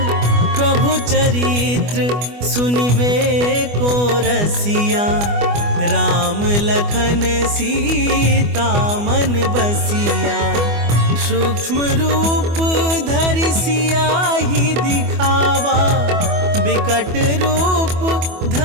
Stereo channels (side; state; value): left; late; 24 ms